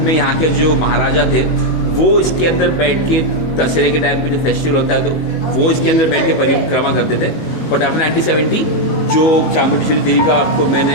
में यहाँ के जो महाराजा थे वो इसके अंदर बैठ के दशहरे के टाइम पे जो फेस्टिवल होता है तो वो इसके अंदर बैठ के परिक्रमा करते थे। बट आफ्टर 1970 जो चामुंडेश्वरी देवी का आपको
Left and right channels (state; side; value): late; right; 19 ms